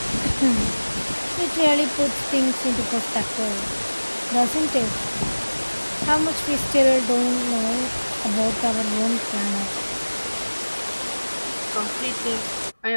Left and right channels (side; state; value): both; inverted; correlation -1.00